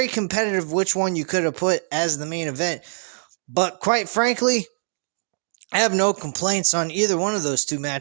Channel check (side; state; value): left; silent; digital silence